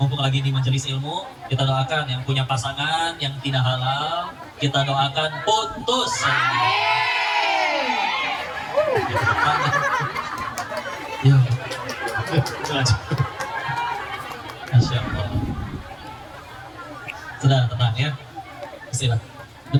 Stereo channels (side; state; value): both; identical; correlation 1.00